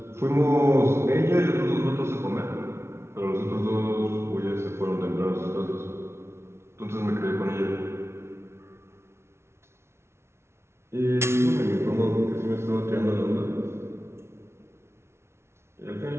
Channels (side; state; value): left; late; 0.13 ms